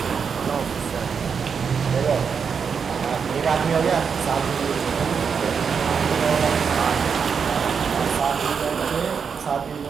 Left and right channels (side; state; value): left; quieter; 6.3 dB